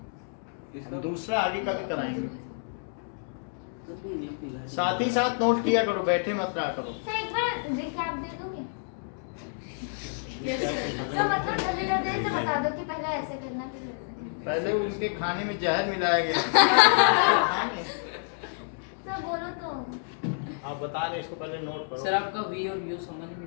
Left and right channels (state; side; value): silent; right; digital silence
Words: दूसरा आगे कभी कराएंगे। साथ ही साथ नोट किया करो, बैठे मत रहा करो। सर एक बार रिकैप दे दोगे? सर मतलब जल्दी जल्दी से बता दो कि पहले ऐसे करना फिर वैसे करना। पहले उनके खाने में जहर मिलाया गया। सर बोलो तो आप बता रहे इसको पहले नोट करो। सर आपका वी और यू समझ में